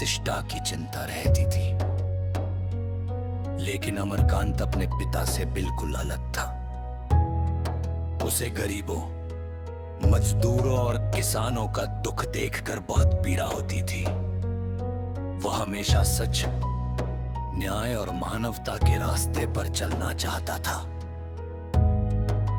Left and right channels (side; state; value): both; identical; correlation 1.00